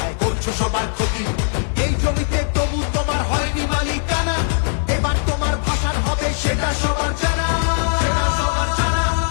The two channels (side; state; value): right; silent; digital silence